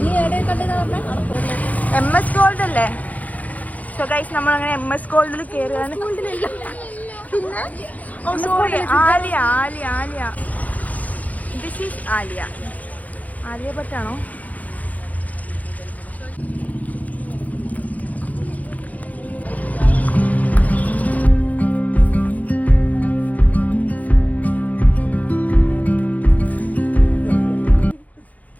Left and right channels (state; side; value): late; right; 0.076 ms